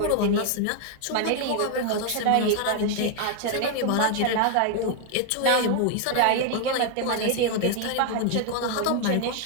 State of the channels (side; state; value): both; different; correlation 0.00